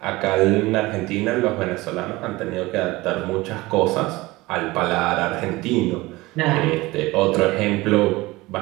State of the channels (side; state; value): left; quieter; 20.5 dB